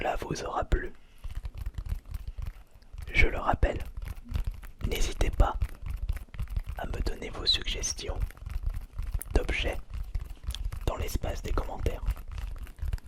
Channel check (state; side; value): identical; both; correlation 1.00